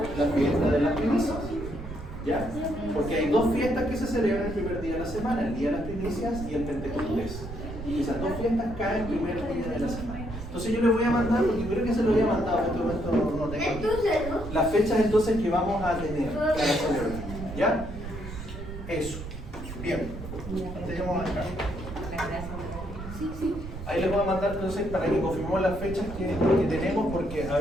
la fiesta de las primicias. ¿Ya? Porque hay dos fiestas que se celebran el primer día de la semana, el día de las primicias y el Pentecostés. Y esas dos fiestas caen el primer día de la semana. Entonces yo les voy a mandar, porque creo que se lo había mandado, en este momento no tengo aquí, las fechas entonces que vamos a tener para celebrar. ¿Ya? Eso. Bien. Tenemos acá. Ahí les voy a mandar entonces para que confirmemos las fechas que tenemos, porque a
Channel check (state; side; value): noise; right; rumble, 10 dB below the sound